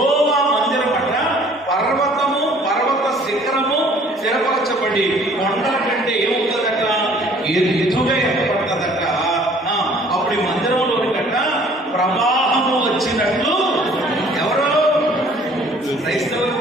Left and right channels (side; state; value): both; normal; correlation 0.55